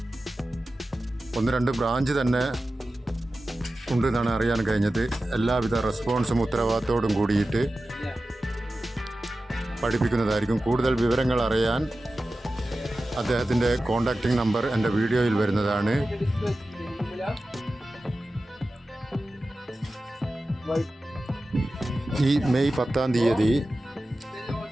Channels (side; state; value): both; normal; correlation 0.94